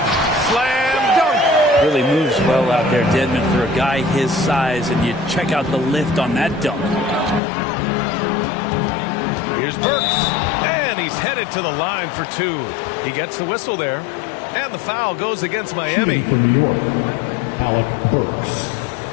Slam dunk. Really moves well out there, Dedmon, for a guy his size, and you check out the lift on that dunk. Here's Burks, and he's headed to the line for 2. He gets the whistle there, and the foul goes against Miami. For New York, Alec Burks.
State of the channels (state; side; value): drops out; right; at 7.4 s